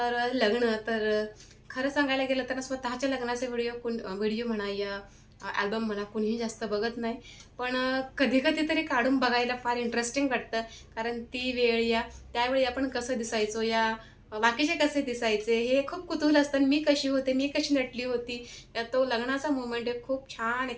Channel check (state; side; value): identical; both; correlation 1.00